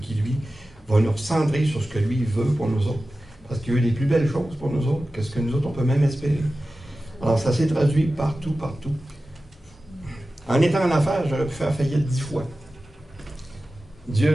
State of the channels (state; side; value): normal; both; correlation 0.95